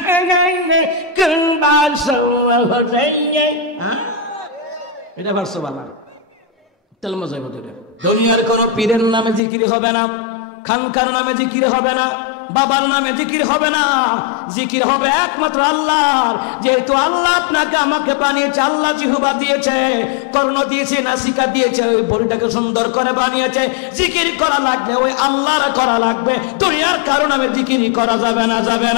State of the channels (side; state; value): right; drops out; at 9.4 s